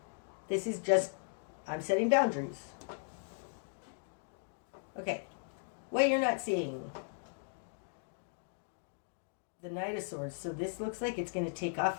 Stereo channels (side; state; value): right; silent; digital silence